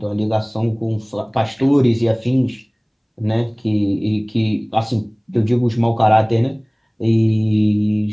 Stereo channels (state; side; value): identical; both; correlation 1.00